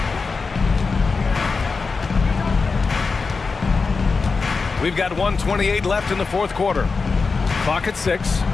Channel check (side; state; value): right; quieter; 4.5 dB